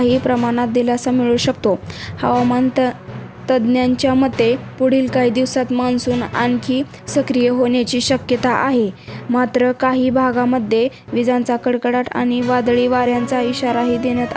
प्रमाणात दिलासा मिळू शकतो. हवामान तज्ज्ञांच्या मते पुढील काही दिवसात मान्सून आणखी सक्रिय होण्याची शक्यता आहे. मात्र काही भागांमध्ये विजांचा कडकडाट आणि वादळी वाऱ्यांचा इशाराही देण्यात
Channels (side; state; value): both; identical; correlation 1.00